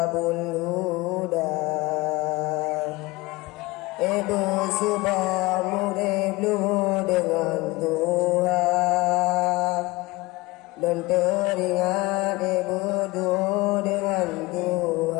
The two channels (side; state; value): right; quieter; 22.1 dB